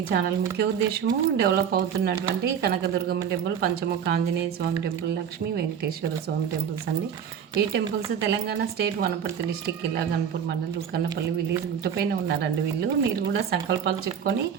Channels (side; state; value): left; quieter; 8.0 dB